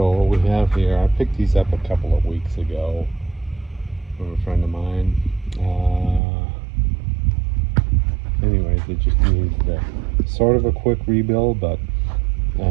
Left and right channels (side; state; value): left; drops out; at 6.2 s